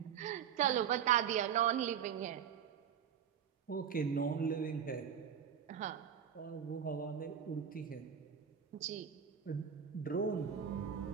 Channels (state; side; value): quieter; left; 8.2 dB